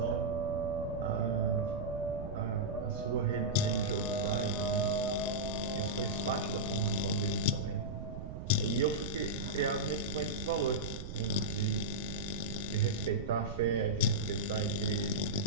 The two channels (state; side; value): noise; right; rumble, 7 dB below the sound